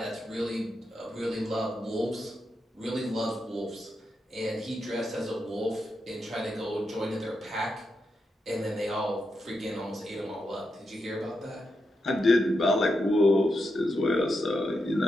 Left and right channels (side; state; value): both; normal; correlation 0.85